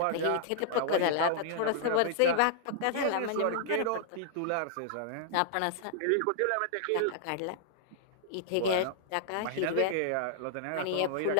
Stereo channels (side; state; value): both; different; correlation -0.01